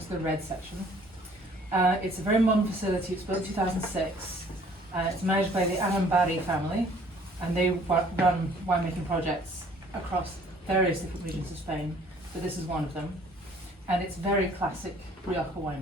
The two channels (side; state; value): both; normal; correlation 0.56